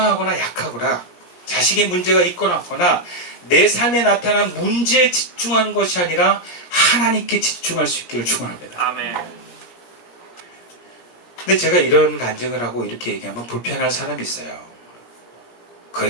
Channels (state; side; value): late; right; 17 ms